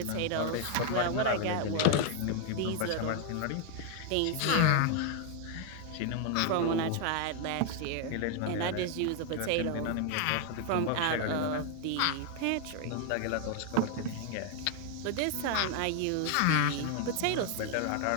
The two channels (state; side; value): different; both; correlation 0.00